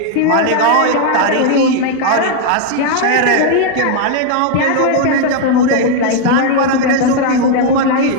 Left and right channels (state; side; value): different; both; correlation 0.00